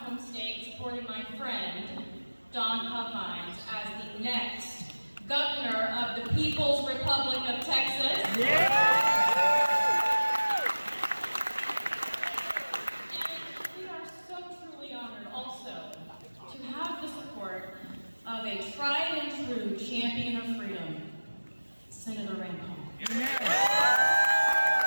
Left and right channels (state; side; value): inverted; both; correlation -1.00